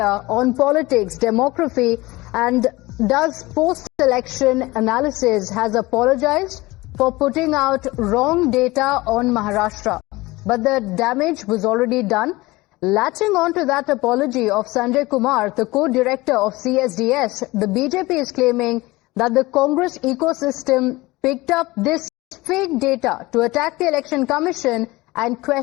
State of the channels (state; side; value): quieter; right; 20.8 dB